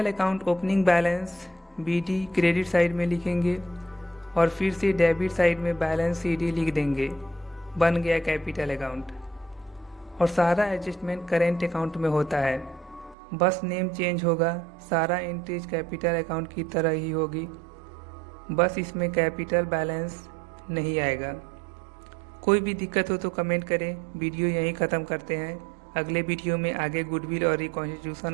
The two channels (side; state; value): left; drops out; at 13.2 s